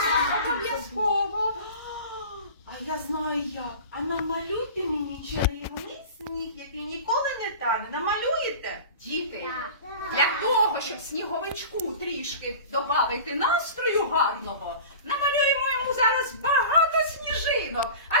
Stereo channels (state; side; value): inverted; both; correlation -0.37